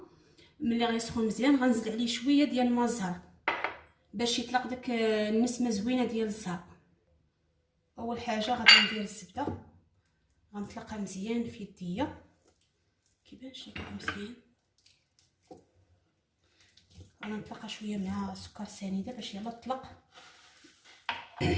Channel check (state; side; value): identical; both; correlation 1.00